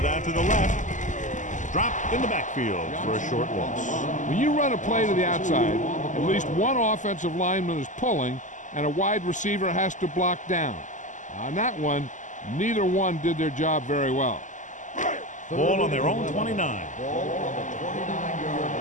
out to the left. dropped in the backfield for a short loss. When you run a play to the outside, at least one offensive lineman is pulling, and a wide receiver has to block down. On that one, neither one did their job very well. Ball on their own 29. Ball on the 29-yard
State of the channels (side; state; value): right; late; 0.37 ms